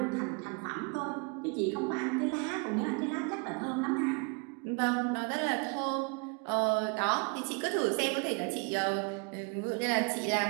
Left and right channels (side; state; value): left; quieter; 32.6 dB